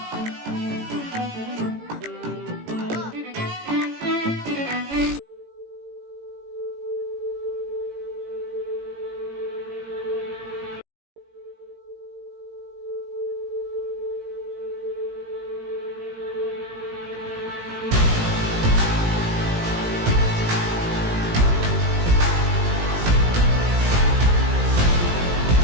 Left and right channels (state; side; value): late; left; 18 ms